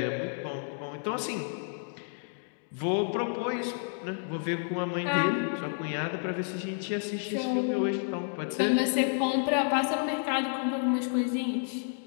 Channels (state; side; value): silent; right; 58 dB below the other